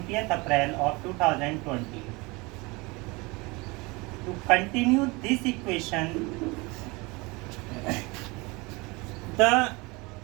April of 2020. To continue this equation, the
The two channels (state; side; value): quieter; left; 25.4 dB